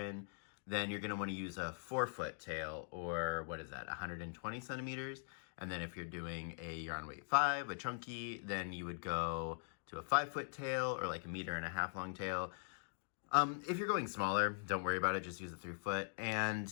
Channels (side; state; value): right; silent; digital silence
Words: then you're gonna wanna use a 4-foot tail, or what is that, 120 centimeters? And then if you're doing a yarn weight 5, a chunky, then you would go to a 5-foot tail, or like a 1.5 meter long tail. If you're going smaller, don't worry about it, just use a 3-foot.